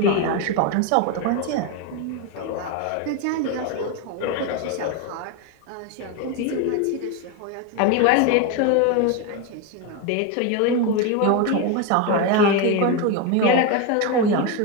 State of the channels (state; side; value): different; both; correlation 0.02